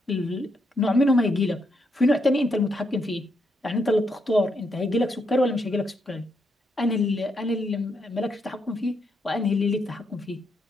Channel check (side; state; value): both; normal; correlation 0.78